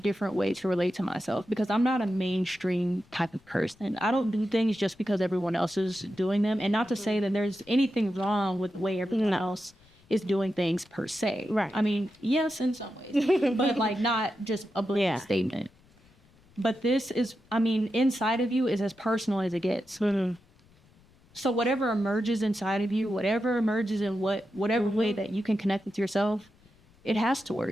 way to relate to myself because I'm not a mainstream type of person. I don't do things just because everyone else is doing them. And not to say that there's anything wrong with the way everyone else is doing things per se. Right. I mean, yes, in some ways, but like not just a blanket statement. But this is, inside of you is as personal as it gets. Mm-hmm. So whatever emerges inside of you, whatever emerges in whatever way that you can connect with yourself, it has to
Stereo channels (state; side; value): noise; left; rumble, 30 dB below the sound